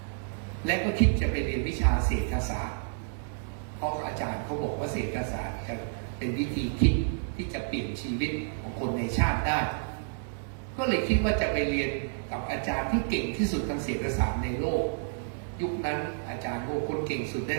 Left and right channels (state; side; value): silent; left; digital silence